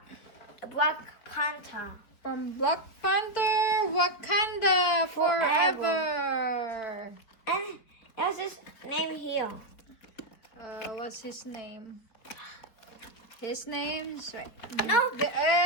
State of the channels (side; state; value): right; late; 4.5 ms